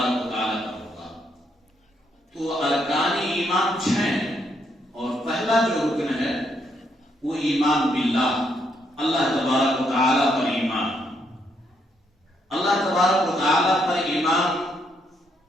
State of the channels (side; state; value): both; normal; correlation 0.75